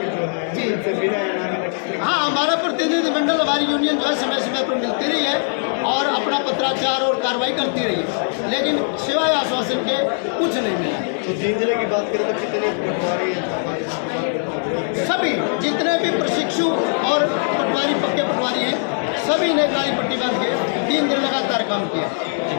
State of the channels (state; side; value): silent; right; 62 dB below the other